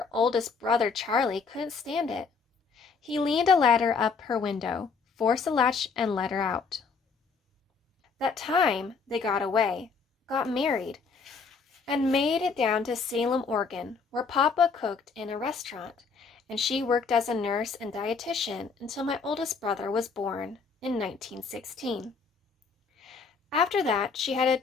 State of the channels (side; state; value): right; quieter; 5.1 dB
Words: oldest brother, Charlie, couldn't stand it. He leaned a ladder up her window, forced a latch, and let her out. That time they got away, got married, and made it down to Salem, Oregon, where Papa cooked in a restaurant, and she worked as a nurse and dietitian until my oldest brother was born in 1916. After that, she had a